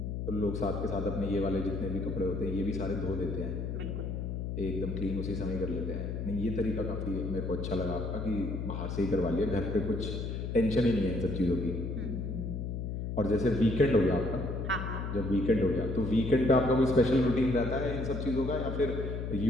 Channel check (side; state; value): left; noise; hum, 4 dB below the sound